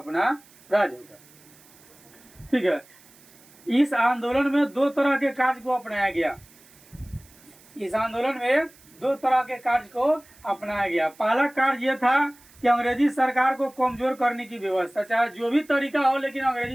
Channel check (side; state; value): right; noise; hiss, 26 dB below the sound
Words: राज होगा, ठीक है। इस आंदोलन में 2 तरह के कार्य को अपनाया गया। इस आंदोलन में 2 तरह के कार्य को अपनाया गया। पहला कार्य यह था कि अंग्रेजी सरकार को कमजोर करने की व्यवस्था, चाहे जो भी तरीका हो, लेकिन